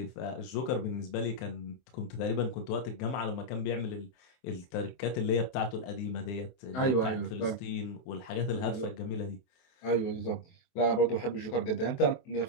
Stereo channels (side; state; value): right; late; 23 ms